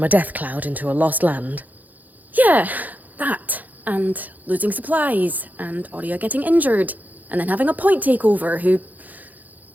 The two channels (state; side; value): late; left; 0.082 ms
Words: a death cloud into a lost land? Yeah, that. And losing supplies, and Aurea getting injured, and then having a point takeover who...